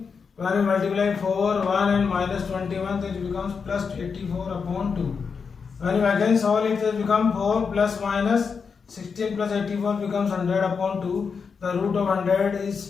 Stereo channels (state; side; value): quieter; right; 5.7 dB